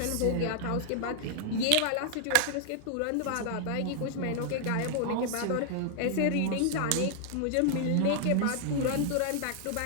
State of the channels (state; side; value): different; both; correlation -0.01